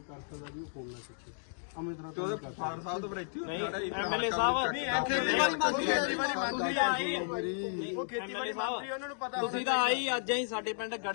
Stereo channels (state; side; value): silent; right; digital silence